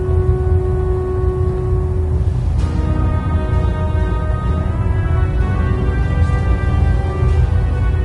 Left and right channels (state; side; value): identical; both; correlation 1.00